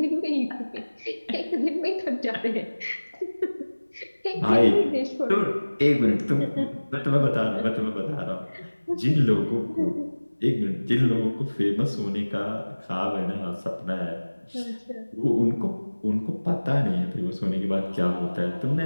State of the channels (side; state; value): both; inverted; correlation -1.00